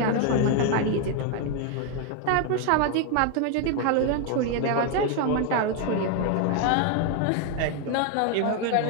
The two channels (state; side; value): different; both; correlation 0.01